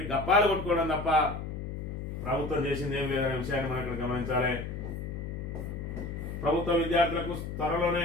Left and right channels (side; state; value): left; noise; hum, 6 dB below the sound